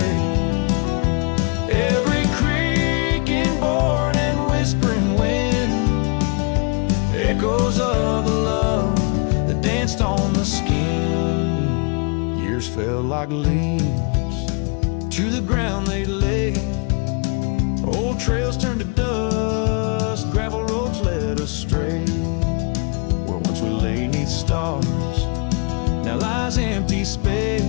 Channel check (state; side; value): quieter; right; 34.6 dB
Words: Every creaking board and whispering wind, echoes of the love that danced on the skin. Years fell like leaves, to the ground they lay. Old trails turned to dust, gravel roads led astray. Where once we lay 'neath stars, now lies empty space,